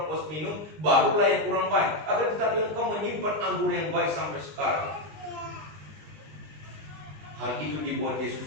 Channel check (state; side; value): late; left; 20 ms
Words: puas minum, barulah yang kurang baik. Akan tetapi engkau menyimpan anggur yang baik sampai sekarang. Hal itu dibuat